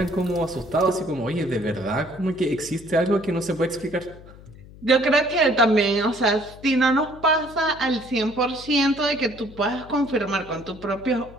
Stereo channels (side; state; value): left; noise; hum, 20 dB below the sound